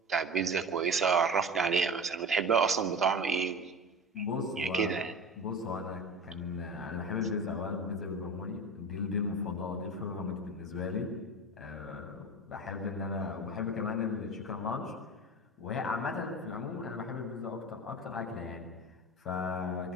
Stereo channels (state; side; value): normal; both; correlation 0.32